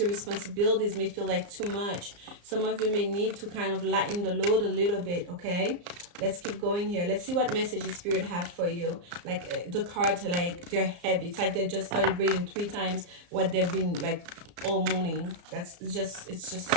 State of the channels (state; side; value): late; left; 34 ms